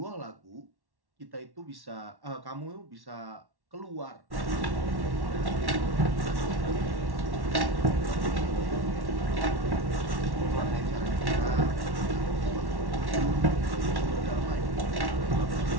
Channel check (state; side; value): late; left; 1.1 ms